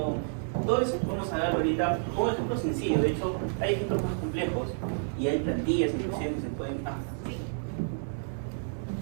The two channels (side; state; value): left; silent; 58 dB below the other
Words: Todo eso vamos a dar ahorita un ejemplo sencillo. De hecho, hay ejemplos más complejos y hay plantillas inclusive que se pueden... Qué